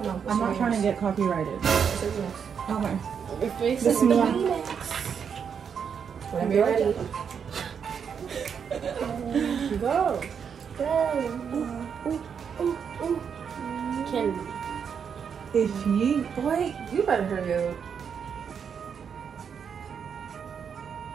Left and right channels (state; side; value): quieter; left; 7.1 dB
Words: No, I'm not trying to get copyrighted. Okay. Your face This is one. Whenever you're ready. Go. Candy. If you Boy, you better hurry up.